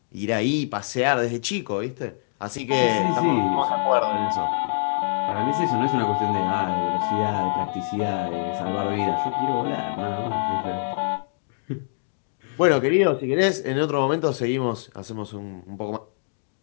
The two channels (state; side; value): silent; right; digital silence